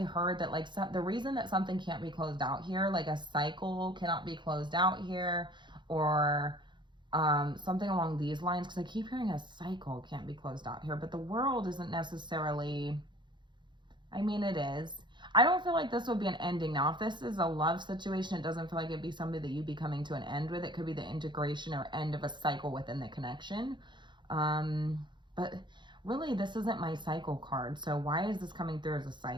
heard that, like, the reason that something can't be closed out here, like a cycle cannot be closed out here, or something along these lines, because I keep hearing a cycle can't be closed out here, but the world isn't necessarily, I mean, it is. I don't feel like this would be an ending. Now, if this is a love situation, it doesn't feel like it'd be somebody that you'd be coming to an end with. It could be the integration or end of a cycle within the connection. But really, this isn't my cycle card. So why is this coming through as a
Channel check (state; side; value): late; left; 0.22 ms